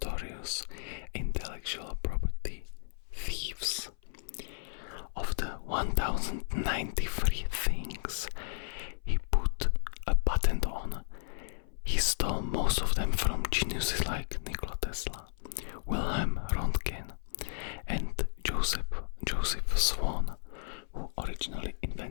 intellectual property thieves. Of the 1093 things he put a patent on, he stole most of them from geniuses like Nikola Tesla, Wilhelm Röntgen, and Joseph Swan, who originally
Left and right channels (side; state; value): right; silent; 55 dB below the other